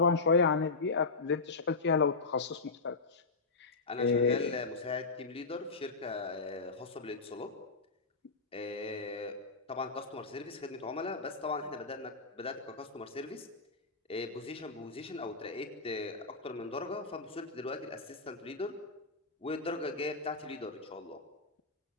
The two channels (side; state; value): right; quieter; 4.0 dB